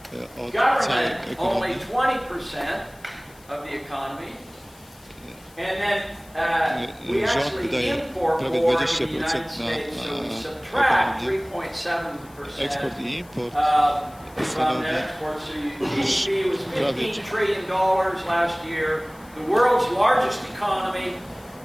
od całej Government, only ekonomii. 20% of the economy. And then we Rząd actually wydaje import prawie more in the 20% United States, so we na subtract ekonomię. 3.7% Eksport i import from stanowi net export. So GDP was prawie $15 trillion last year, the world's largest economy.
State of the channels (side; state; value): left; noise; hiss, 26 dB below the sound